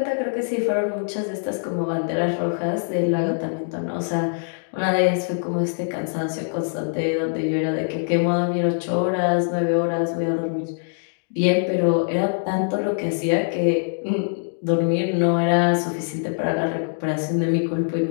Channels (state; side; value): silent; right; digital silence